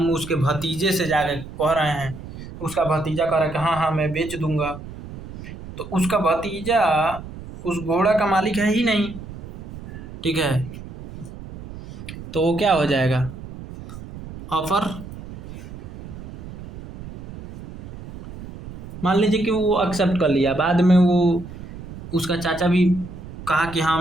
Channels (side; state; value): right; noise; rumble, 13 dB below the sound